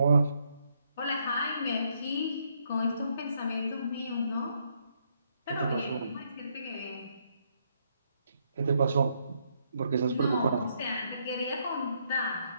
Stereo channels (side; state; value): both; inverted; correlation -0.74